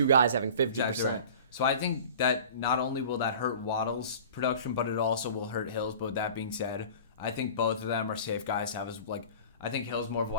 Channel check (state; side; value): inverted; both; correlation -0.41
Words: guys having 50%. Exactly right. So I think that not only will that hurt Waddle's production, but it also will hurt Hill's. But with that being said, I think both of them are safe guys to have as I think Hill's more of a